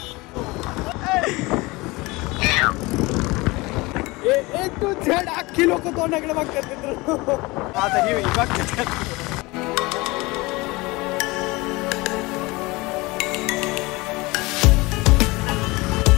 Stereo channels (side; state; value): right; quieter; 23.1 dB